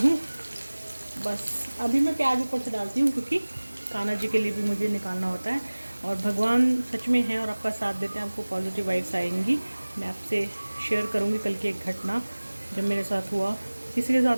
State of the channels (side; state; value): both; inverted; correlation -1.00